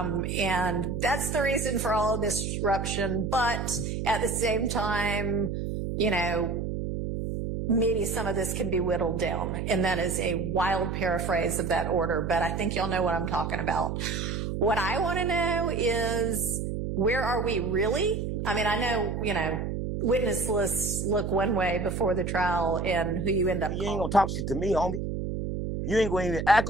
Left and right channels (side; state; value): right; noise; hum, 3 dB below the sound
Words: that's the reason for all of this disruption. But at the same time, you know, maybe some of this can be whittled down. And that is a wild paraphrase of that order, but I think y'all know what I'm talking about. What I want to know is, where are we really? I mean, I know, you know, witness lists look one way before the trial and who you end up You ain't gonna talk shit to me, homie. You ain't gonna even act